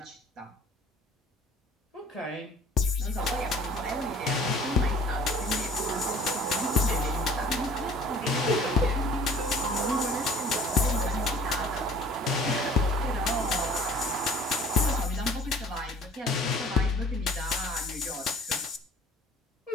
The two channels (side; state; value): both; normal; correlation 0.50